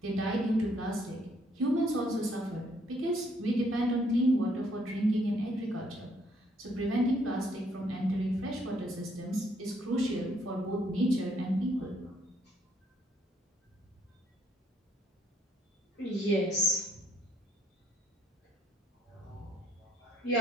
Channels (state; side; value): normal; both; correlation 0.67